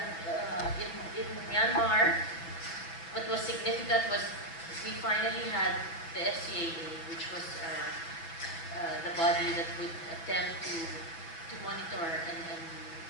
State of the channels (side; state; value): right; late; 6.0 ms